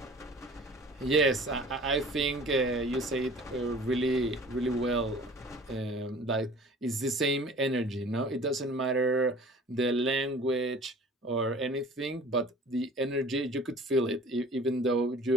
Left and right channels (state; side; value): normal; both; correlation 0.46